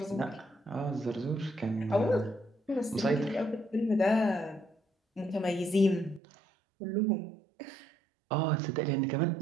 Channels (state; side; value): drops out; left; at 6.2 s